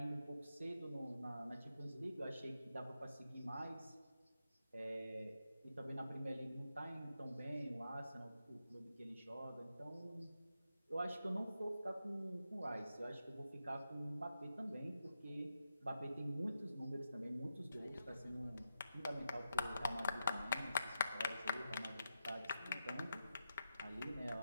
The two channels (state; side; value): inverted; both; correlation -0.86